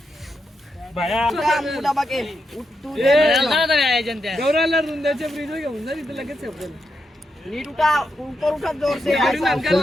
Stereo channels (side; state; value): both; normal; correlation 0.84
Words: गौराला रुंदाच्या फ्रीज घेऊन जा तिथे लगेच